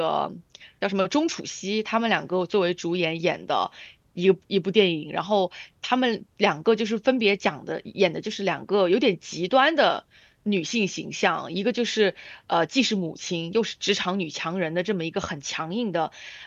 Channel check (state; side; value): identical; both; correlation 1.00